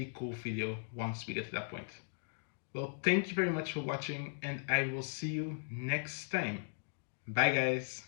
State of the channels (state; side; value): silent; right; digital silence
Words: cool video once we get to that point. Well, thank you very much for watching, and I will see you next time. Bye, guys.